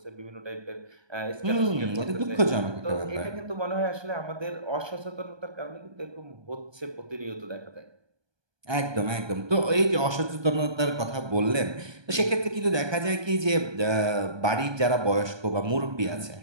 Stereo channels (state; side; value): late; left; 1.2 ms